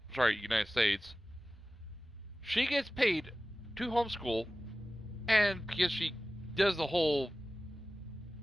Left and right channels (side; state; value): both; normal; correlation 0.96